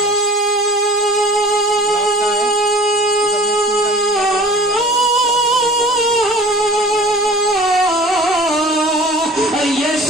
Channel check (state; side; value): normal; both; correlation 0.44